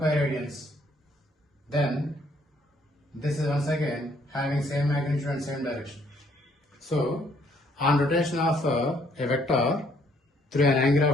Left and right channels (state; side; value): normal; both; correlation 0.66